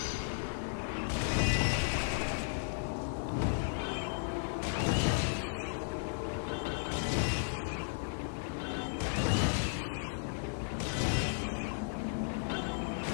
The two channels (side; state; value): right; silent; digital silence